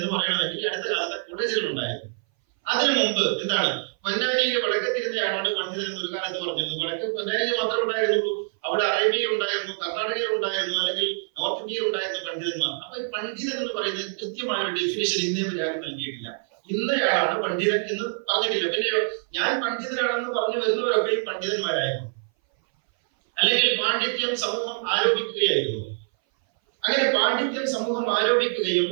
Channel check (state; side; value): silent; left; 59 dB below the other